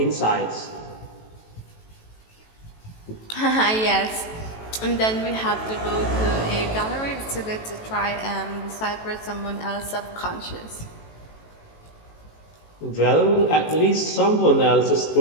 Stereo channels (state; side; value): late; right; 18 ms